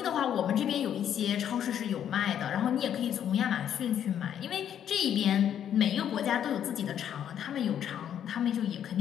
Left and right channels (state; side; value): quieter; right; 9.6 dB